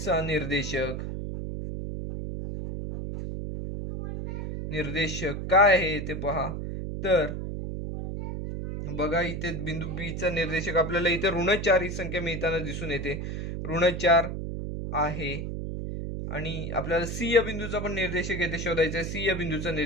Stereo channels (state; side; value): noise; right; hum, 4 dB below the sound